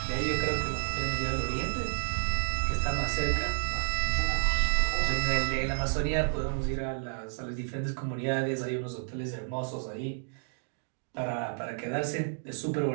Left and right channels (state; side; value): silent; left; digital silence